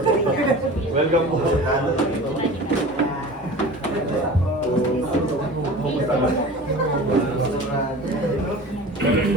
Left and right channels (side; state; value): both; normal; correlation 0.37